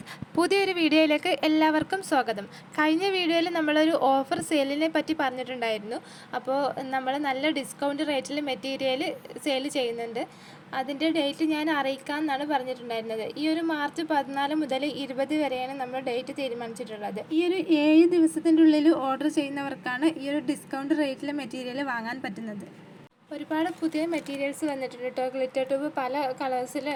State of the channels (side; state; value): both; identical; correlation 1.00